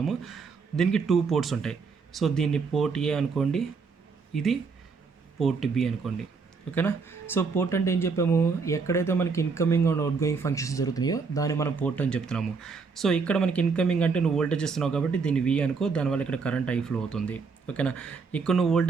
దీనికి 2 పోర్ట్స్ ఉంటాయి. సో దీన్ని పోర్ట్ ఏ అనుకోండి, ఇది పోర్ట్ బి అనుకోండి. ఓకేనా. సో పోర్ట్ అంటే ఏం చెప్పాము, ఎక్కడైతే మనకి incoming and outgoing functions జరుగుతున్నాయో దాన్ని మనం పోర్ట్ అని చెప్తున్నాము. సో ఇక్కడ మనకి ఇన్కమింగ్ అంటే నువ్వు వోల్టేజ్ ఇస్తున్నావు కాబట్టి దీన్ని వి అనుకో, దానివల్ల ఇక్కడ కరెంట్ ఐ ఫ్లో అవుతుంది. ఓకేనా. ఇక్కడ నువ్వు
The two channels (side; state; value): left; quieter; 5.0 dB